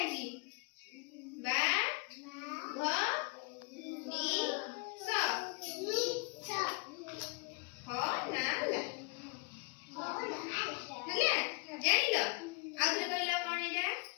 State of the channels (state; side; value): quieter; right; 33.0 dB